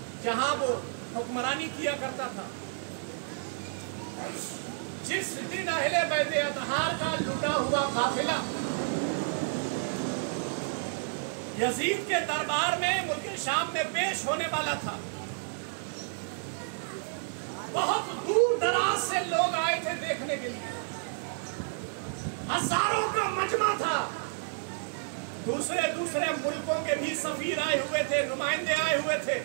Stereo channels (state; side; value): silent; left; digital silence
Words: جہاں وہ حکمرانی کیا کرتا تھا, جس دن اہل بیت اطہار کا لٹا ہوا قافلہ یزید کے دربار میں ملک شام میں پیش ہونے والا تھا, بہت دور دراز سے لوگ آئے تھے دیکھنے کے لیے. ہزاروں کا مجمع تھا. دوسرے ملکوں کے بھی سفیر آئے ہوئے تھے, نمائندے آئے ہوئے تھے